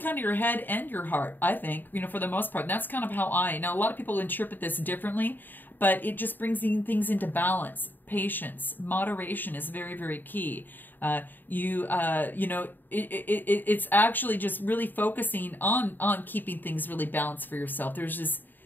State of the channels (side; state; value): right; late; 0.091 ms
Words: of your head and your heart, I think, you know, for the most part. And that's kind of how now a lot of people interpret this differently, but it just brings things into balance. Patience, moderation is very, very key. You know, it's actually just really focusing on keeping things really balanced for yourself. There's